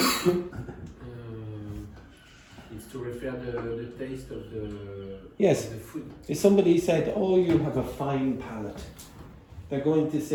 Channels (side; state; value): both; identical; correlation 1.00